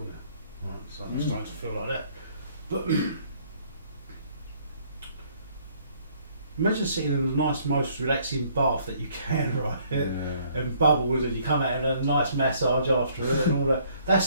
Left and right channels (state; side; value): inverted; both; correlation -0.63